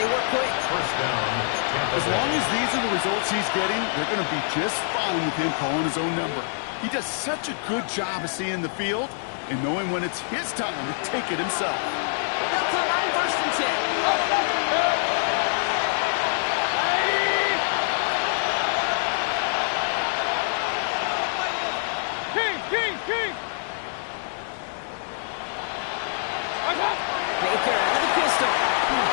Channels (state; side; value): silent; right; digital silence